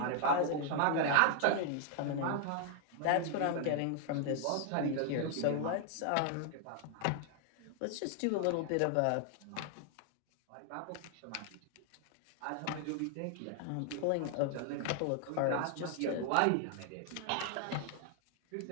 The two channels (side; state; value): both; different; correlation 0.00